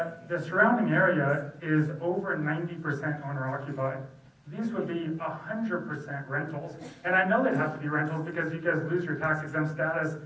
the surrounding area is over 90% owner occupied. These would be 100% rentals. And I know they'd have to be rentals because you guys lose your tax exempt status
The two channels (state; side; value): identical; both; correlation 1.00